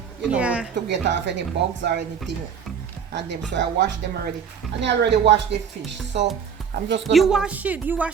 you know, to get off any bugs or anything on them. So I washed them already, and I already washed the fish. So I'm just gonna wash it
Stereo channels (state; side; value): quieter; left; 7.1 dB